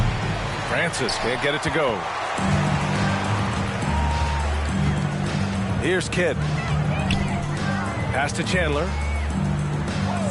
Francis can't get it to go. Here's Kidd. Pass to Chandler.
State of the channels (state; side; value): identical; both; correlation 1.00